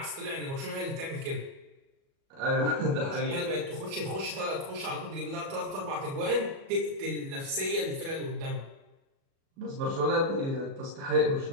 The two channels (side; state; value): left; late; 37 ms